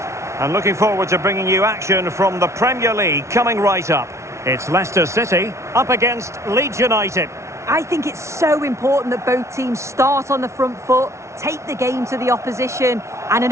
And looking forward to bringing you action from the Premier League coming right up. It's Leicester City up against Leeds United. I think it's so important that both teams start on the front foot, take the game to the opposition, and an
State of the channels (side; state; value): left; late; 0.13 ms